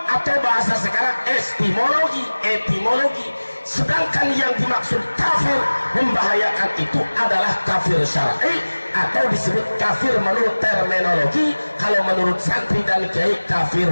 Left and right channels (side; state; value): both; inverted; correlation -1.00